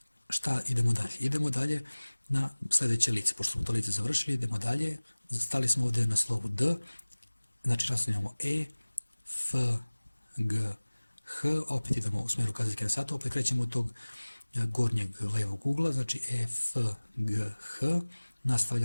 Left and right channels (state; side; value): inverted; both; correlation -1.00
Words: Šta idemo dalje? Idemo dalje na sljedeće lice, pošto smo to lice završili, idemo dalje, stali smo ovdje na slovu D, znači nastavljamo E, F, G, H, opet idemo u smjeru kazaljke na satu, opet krećemo od tog gornjeg levog ugla, znači E, F, G, H,